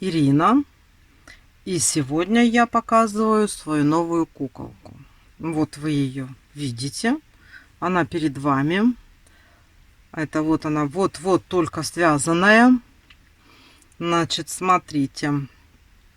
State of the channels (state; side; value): identical; both; correlation 1.00